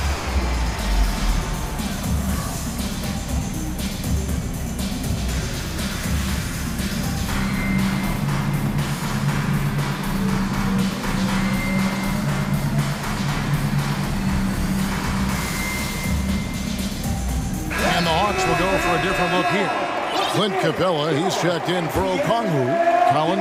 And the Hawks will go for a different look here. Clint Capella, he's checked in for Okongwu.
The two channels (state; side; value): identical; both; correlation 1.00